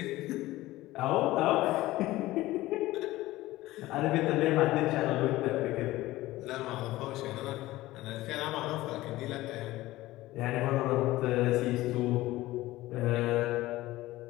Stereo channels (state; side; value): quieter; right; 17.4 dB